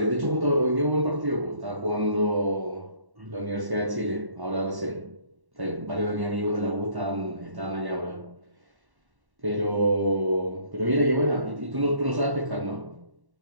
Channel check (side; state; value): left; late; 1.1 ms